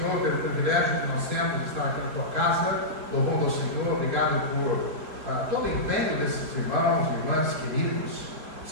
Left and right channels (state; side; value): late; left; 4.5 ms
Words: pelo privilégio que nós temos de estar aqui na tua casa, louvando ao Senhor, obrigado por todo o empenho desses irmãos e irmãs queridos,